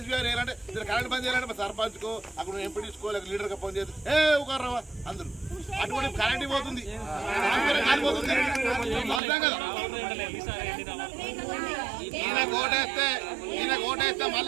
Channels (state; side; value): drops out; left; at 9.2 s